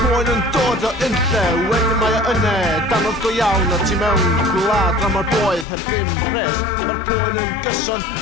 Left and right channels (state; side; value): drops out; right; at 5.7 s